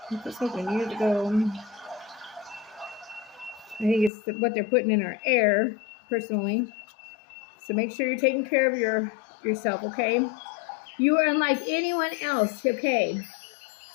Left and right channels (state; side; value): drops out; right; at 4.1 s